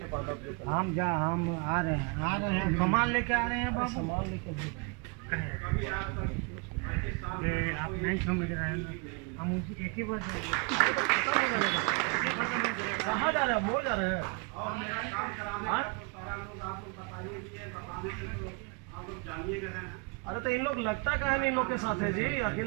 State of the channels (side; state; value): left; quieter; 30.1 dB